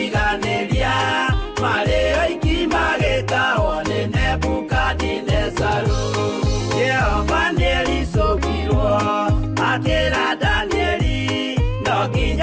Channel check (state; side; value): identical; both; correlation 1.00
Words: marĩ oiki magĩtahwo nĩ Nebukadinezaru. Jehova nĩericũkirwo akĩra Danieli, no